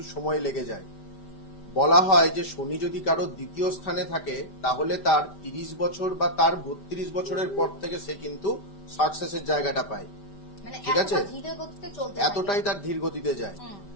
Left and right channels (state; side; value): late; right; 5.0 ms